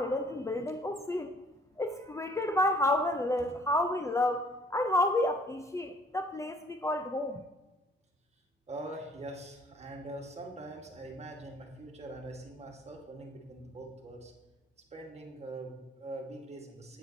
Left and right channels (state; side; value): normal; both; correlation 0.59